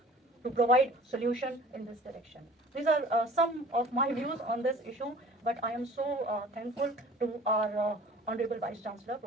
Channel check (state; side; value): normal; both; correlation 0.46